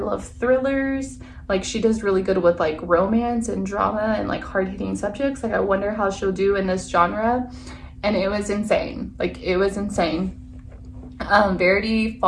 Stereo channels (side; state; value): both; identical; correlation 1.00